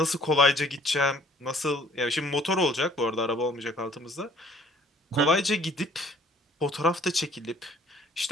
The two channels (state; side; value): normal; both; correlation 0.57